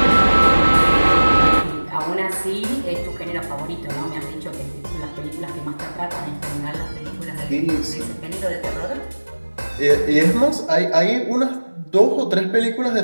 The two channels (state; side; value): inverted; both; correlation -1.00